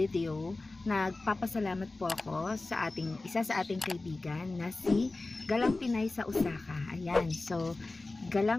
nagpapasalamat po ako sa isa sa ating kaibigan na si Galang Pinay sa Osaka. Ayan, so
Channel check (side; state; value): right; quieter; 3.2 dB